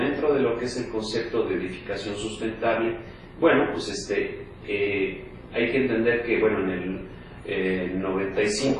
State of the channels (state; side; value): identical; both; correlation 1.00